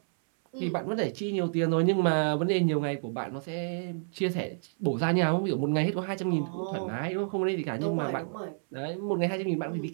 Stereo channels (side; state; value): left; silent; 58 dB below the other